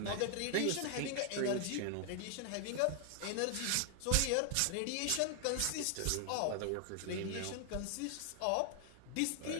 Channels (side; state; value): both; different; correlation 0.00